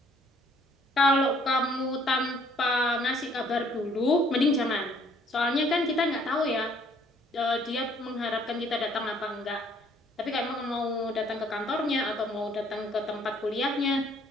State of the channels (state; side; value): normal; both; correlation 0.62